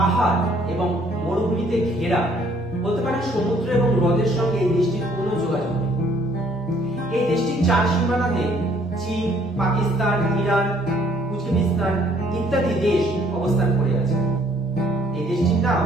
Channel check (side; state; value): both; normal; correlation 0.62